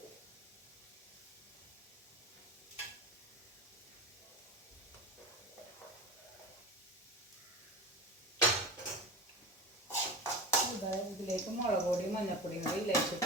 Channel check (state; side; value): normal; both; correlation 0.29